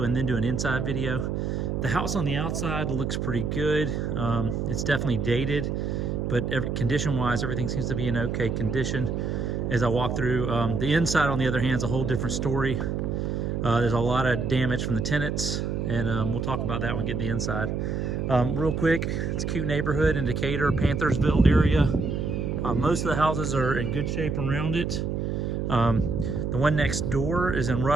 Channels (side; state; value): right; noise; hum, 1 dB below the sound